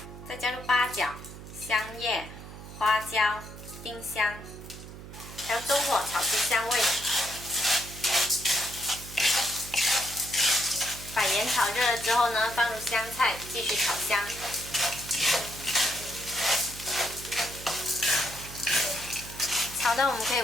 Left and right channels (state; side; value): noise; right; hum, 14 dB below the sound